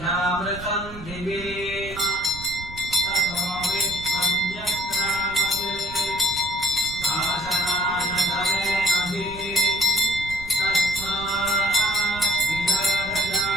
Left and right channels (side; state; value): right; noise; rumble, 14 dB below the sound